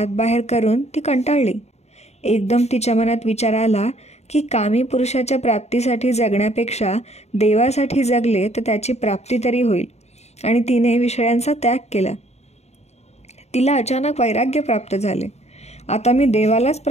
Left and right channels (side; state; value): right; late; 0.31 ms